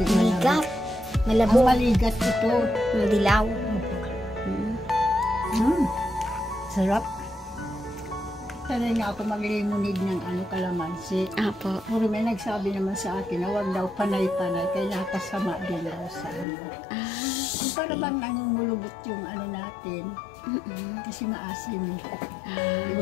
Maligat. Ang Malabo. maligat ito. Dilaw. Sarap. Sanay nga ako mag-lemonade ng kalamansi. Apo. Puro may nagsabi naman sa akin na wag daw panay-panay kaya nakasama din daw sa Yung para bang nangungulubot yung natin. Kasi maasim.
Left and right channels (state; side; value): drops out; right; at 16.4 s